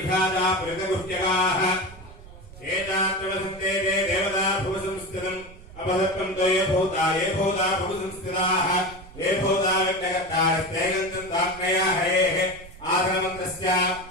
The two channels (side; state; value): right; noise; rumble, 18 dB below the sound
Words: पुरितगुह्यकाः एतात्रवसन्ते ते देवता भुवसंस्थितम् अपसत्त्वं ते ये भूता भुवसंस्थिताः ये भूता व्यक्तकर्तारस्ते गन्तन्ताग्नया हरेः आसनमन्त्रस्य